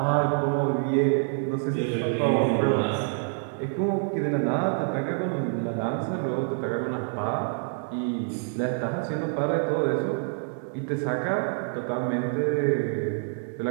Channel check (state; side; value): silent; left; 55 dB below the other